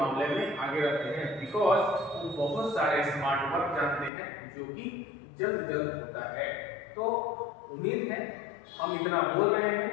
में आगे रहते हैं, बिकॉज वो बहुत सारे स्मार्ट वर्क जानते हैं जो कि जल्द होता है। तो उम्मीद है हम इतना बोल रहे हैं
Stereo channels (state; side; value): drops out; right; at 4.1 s